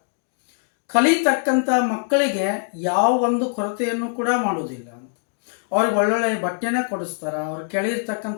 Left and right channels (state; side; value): silent; right; 64 dB below the other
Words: ಕಲಿತಕ್ಕಂಥ ಮಕ್ಕಳಿಗೆ ಯಾವ ಒಂದು ಕೊರತೆಯನ್ನು ಕೂಡ ಮಾಡೋದಿಲ್ಲ. ಅವ್ರಿಗೆ ಒಳ್ಳೊಳ್ಳೆ ಬಟ್ಟೆನ ಕೊಡಿಸ್ತಾರೆ, ಅವ್ರು